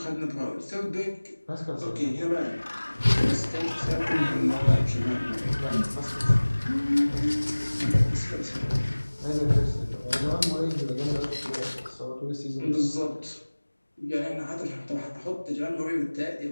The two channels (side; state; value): both; inverted; correlation -1.00